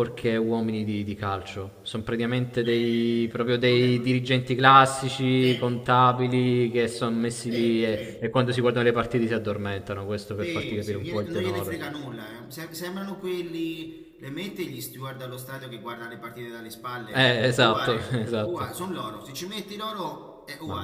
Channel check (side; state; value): both; identical; correlation 1.00